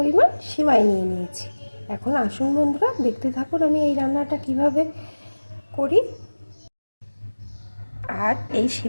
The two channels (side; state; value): both; inverted; correlation -1.00